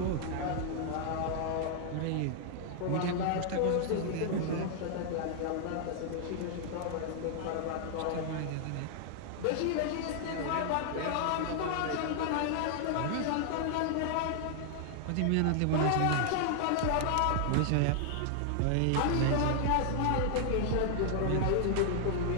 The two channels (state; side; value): different; both; correlation 0.00